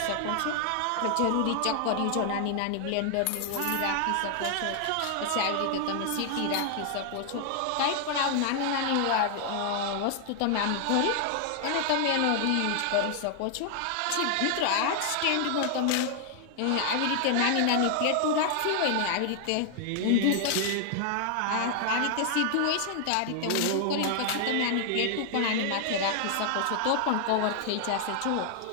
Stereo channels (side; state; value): both; different; correlation 0.00